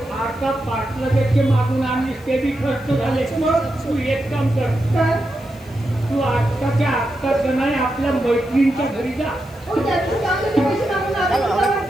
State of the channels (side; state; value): right; noise; hiss, 29 dB below the sound